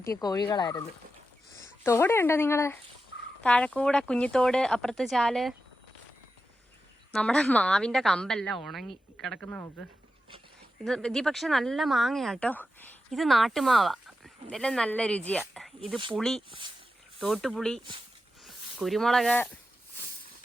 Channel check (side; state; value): both; normal; correlation 0.90